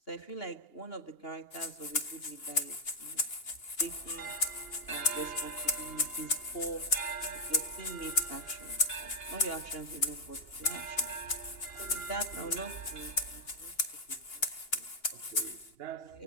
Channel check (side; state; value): right; late; 2.8 ms